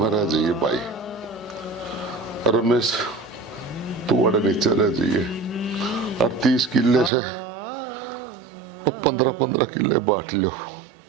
रह जाइए भाई रमेश तू अड़े नीचे रह जाइए और 30 किले से 15-15 किले बांट लो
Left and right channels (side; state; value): left; drops out; at 7.1 s